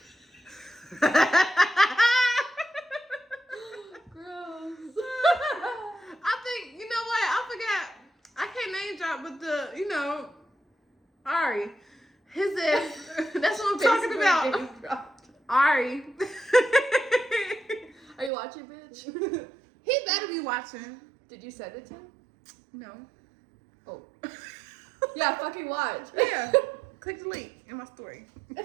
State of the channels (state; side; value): drops out; left; at 18.3 s